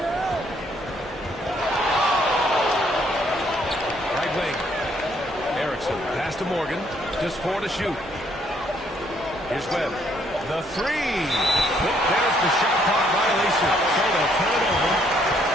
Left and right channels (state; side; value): normal; both; correlation 0.68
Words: Right wing. Erickson. Pass to Morgan. Just 4 to shoot. Here's Webb. The three. There's the shot clock violation. So they'll turn it over.